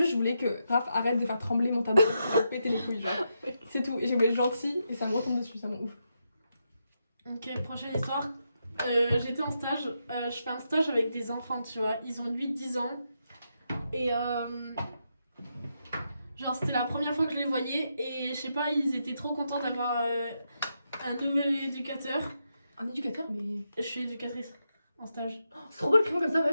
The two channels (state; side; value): inverted; both; correlation -0.83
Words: je voulais que Raph arrête de faire trembler mon tabouret pour péter les couilles, genre. C'est tout. Et j'ai voulu être gentille et ça me retombe dessus, ça m'en ouf. Ok, prochaine histoire. J'étais en stage. Je fais un stage avec des enfants, tu vois. Ils ont 8-10 ans. Et genre, c'était la première fois que je les voyais. Et je sais pas, ils étaient trop contents d'avoir un nouvel éducateur. Un éducateur, mais. Je suis éducatrice en stage. c'est trop beau le crayon comme ça,